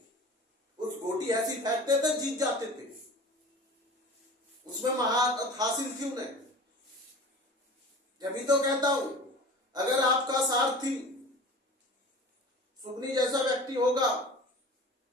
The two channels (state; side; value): normal; both; correlation 0.38